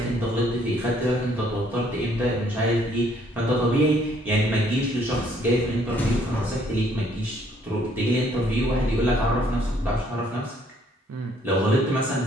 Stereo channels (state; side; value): normal; both; correlation 0.65